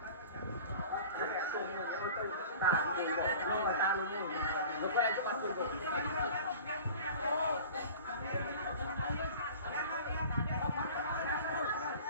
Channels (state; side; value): inverted; both; correlation -0.41